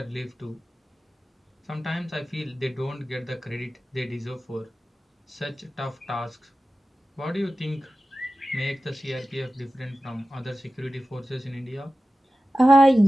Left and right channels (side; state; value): both; normal; correlation 0.94